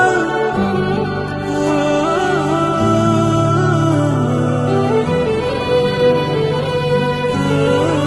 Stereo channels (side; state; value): both; identical; correlation 1.00